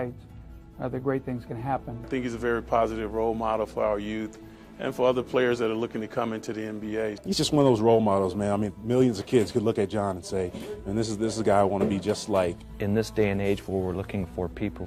the great things can happen. I think he's a very positive role model for our youth and for other players that are looking to come into the NBA. He's just one of those role models, man. I mean, millions of kids could look at John and say, man, this is a guy I want to be just like. In this day and age where we're looking for people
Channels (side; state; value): both; identical; correlation 1.00